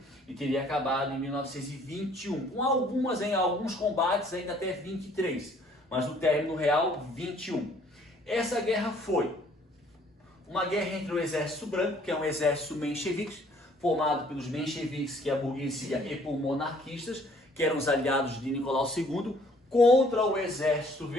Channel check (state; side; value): normal; both; correlation 0.59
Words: e teria acabado em 1921, com alguns combates ainda até 23, mas no término real, 21. Essa guerra foi uma guerra entre o Exército Branco, que é um exército menchevique, formado pelos mencheviques, que é a burguesia, e por monarquistas, que eram os aliados de Nicolau II, contra o Exército